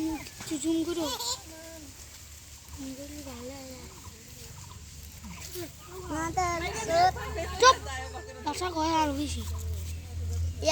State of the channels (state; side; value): identical; both; correlation 1.00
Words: জুম করো চুপ বাসা কয় আর বেশি